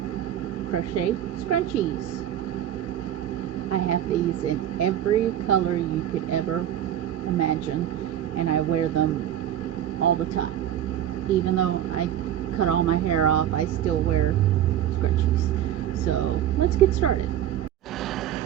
crochet scrunchies. I have these in every color you could ever imagine, and I wear them all the time. Even though I cut all my hair off, I still wear scrunchies. So let's get started.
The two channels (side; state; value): left; quieter; 11.1 dB